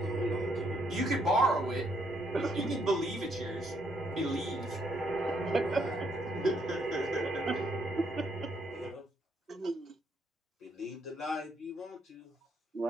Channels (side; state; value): both; normal; correlation 0.72